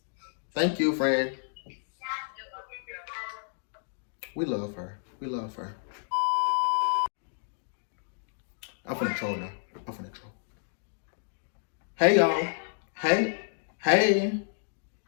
Thank you, friend. We love her. I'm finna troll now. Hey, y'all. Hey.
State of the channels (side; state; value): right; silent; digital silence